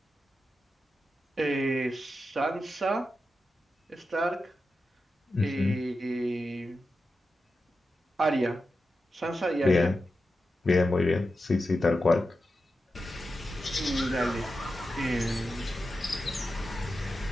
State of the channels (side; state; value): both; normal; correlation 0.90